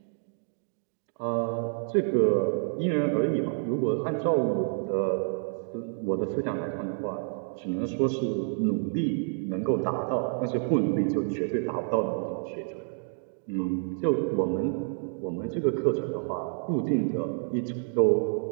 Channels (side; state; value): left; silent; digital silence